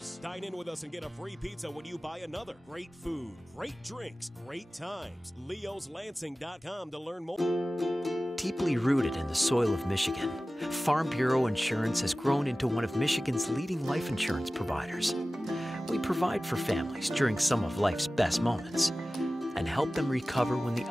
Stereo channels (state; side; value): normal; both; correlation 0.96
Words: Dine in with us and get a free pizza when you buy another. Great food, great drinks, great times. Leo'sLansing.com to learn more. Deeply rooted in the soil of Michigan, Farm Bureau Insurance has grown into one of Michigan's leading life insurance providers. We provide for families during some of life's best moments and help them recover when the